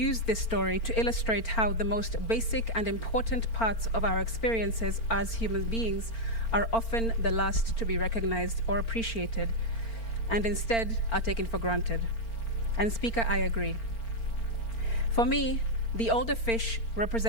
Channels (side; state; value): right; late; 4.4 ms